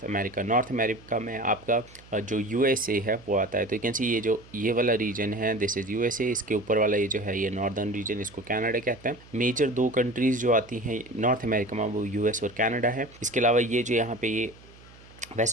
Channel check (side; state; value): right; noise; hum, 23 dB below the sound